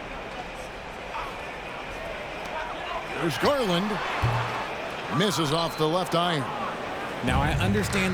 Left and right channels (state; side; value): identical; both; correlation 1.00